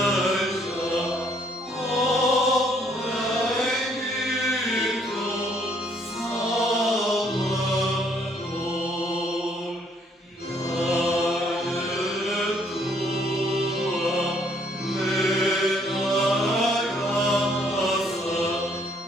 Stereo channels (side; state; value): both; normal; correlation 0.66